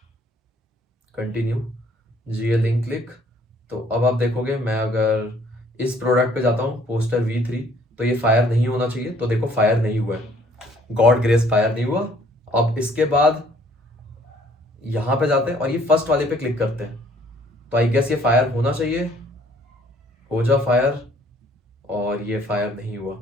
कंटिन्यू, जीए लिंक क्लिक। तो अब आप देखोगे, मैं अगर इस प्रोडक्ट पे जाता हूँ पोस्टर V3, तो ये फायर नहीं होना चाहिए। तो देखो फायर नहीं हुआ है, गॉड ग्रेस फायर नहीं हुआ। अब इसके बाद यहां पे जाते हैं और ये फर्स्ट वाले पे क्लिक करते हैं। तो आई गेस ये फायर होना चाहिए, हो जा फायर। और ये फायर नहीं हुआ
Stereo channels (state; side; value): normal; both; correlation 0.60